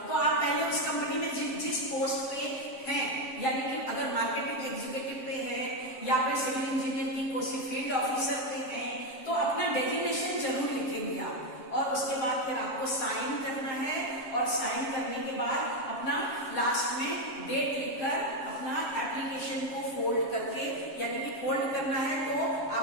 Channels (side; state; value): right; late; 7.7 ms